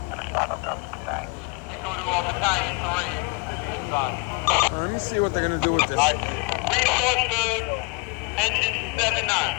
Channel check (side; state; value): right; quieter; 31.4 dB